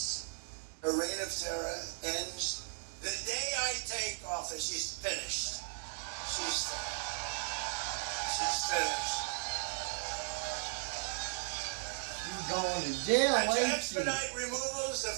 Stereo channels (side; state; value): left; silent; digital silence